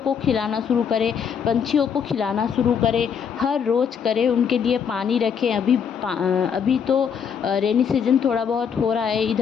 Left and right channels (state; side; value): quieter; right; 7.2 dB